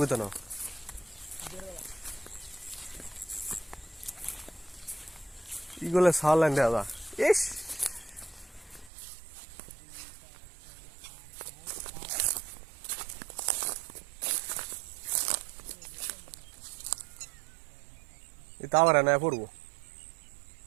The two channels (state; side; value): drops out; left; at 8.9 s